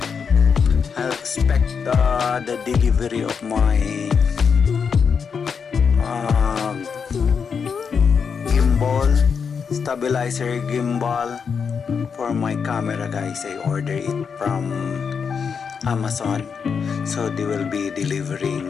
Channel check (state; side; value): quieter; right; 6.2 dB